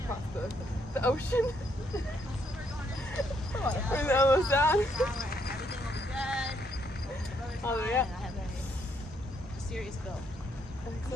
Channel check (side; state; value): both; normal; correlation 0.73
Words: across the ocean. Bring the elbows down. Everything will be good. All the way up. I have a serious bill.